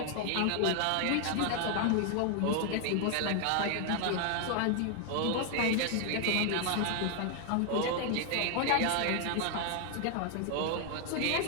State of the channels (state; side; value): different; both; correlation 0.00